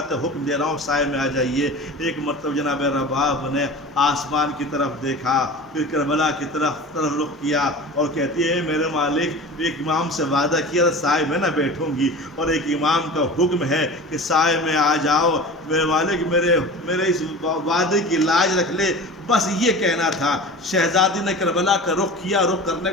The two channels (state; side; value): normal; both; correlation 0.35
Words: حکم دے رہا ہوں، سائے میں آ جائیے۔ ایک مرتبہ جناب رباب نے آسمان کی طرف دیکھا، پھر کربلا کی طرف رخ کیا اور کہتی ہے میرے مالک ایک امام سے وعدہ کیا سائے میں نہ بیٹھوں گی، اور ایک امام کا حکم ہے کہ سائے میں آ جاؤ، میرے والد میرے اس وعدے کی لاج رکھ لے، بس یہ کہنا تھا۔ شہزادی نے کربلا کا رخ کیا، رخ کرنے